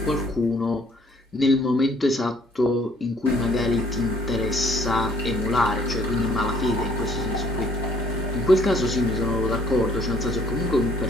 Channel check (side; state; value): both; normal; correlation 0.61